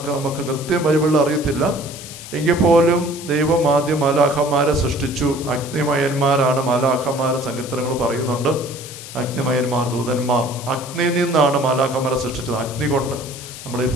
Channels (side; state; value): left; noise; hiss, 13 dB below the sound